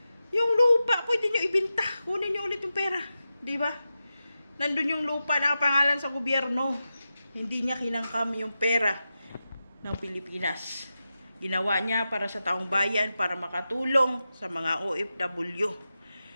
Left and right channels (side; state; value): both; inverted; correlation -0.91